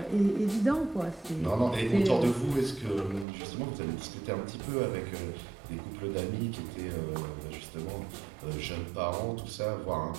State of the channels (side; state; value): left; drops out; at 3.2 s